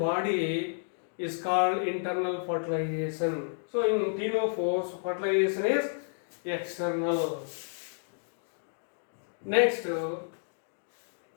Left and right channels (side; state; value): right; silent; digital silence